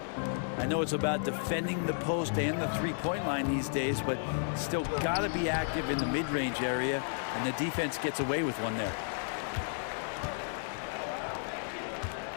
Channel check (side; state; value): right; silent; digital silence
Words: I know it's about defending the post and the three-point line these days, but still got to be active in the mid-range area, and the defense gets away with one there.